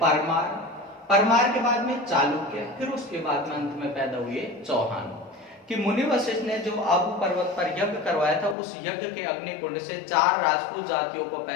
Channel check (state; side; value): drops out; right; at 8.6 s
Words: परमार के बाद में चालुक्य, फिर उसके बाद में अंत में पैदा हुए चौहान। कि मुनि वशिष्ठ ने जो आबू पर्वत पर यज्ञ करवाया था, उस यज्ञ के अग्निकुंड से 4 राजपूत जातियों को